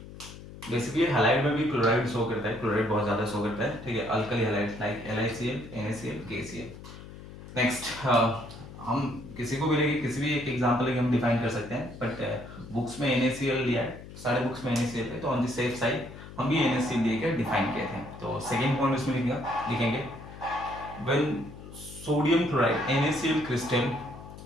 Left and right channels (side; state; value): left; noise; hum, 15 dB below the sound